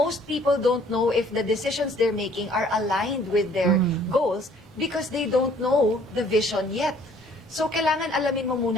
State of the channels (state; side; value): normal; both; correlation 0.58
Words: people don't know if the decisions they're making are aligned with their goals because they don't know the vision yet. So, kailangan alamin mo